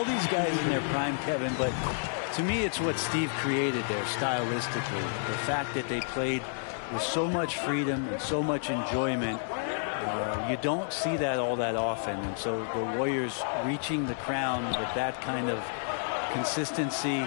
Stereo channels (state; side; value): silent; right; digital silence